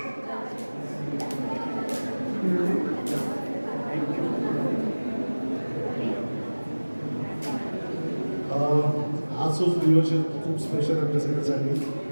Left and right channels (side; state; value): both; inverted; correlation -1.00